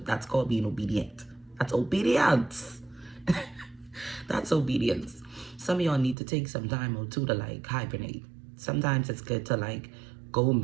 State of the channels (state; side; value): drops out; left; at 6.2 s